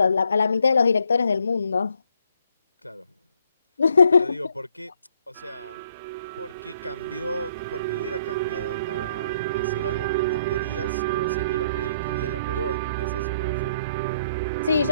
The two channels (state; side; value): inverted; both; correlation -0.68